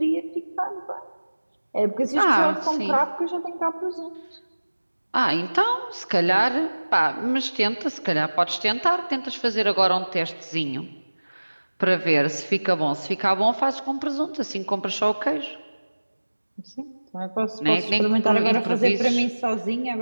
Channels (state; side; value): inverted; both; correlation -1.00